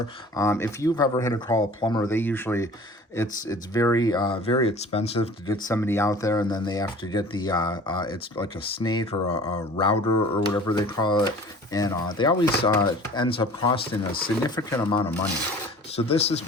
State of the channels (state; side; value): normal; both; correlation 0.45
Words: If you've ever had to call a plumber, they usually, it's very expensive to get somebody out there, and then they have to get the, it's like a snake or a router or whatever they call it. And they always ends up costing a significant amount of money. So this is